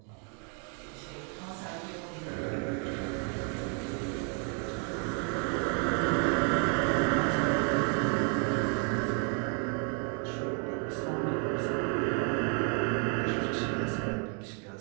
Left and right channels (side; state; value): left; quieter; 39.4 dB